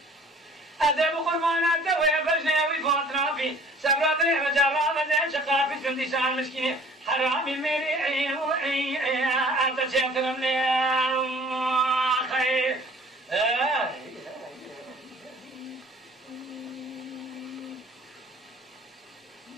أذيب قربانات دوي بجني ويفوتنا في سبرات لي وجرابة دي شقافي كندسان مسكيني حرامي ميري أنت شيطن لي أخي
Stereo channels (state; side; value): normal; both; correlation 0.52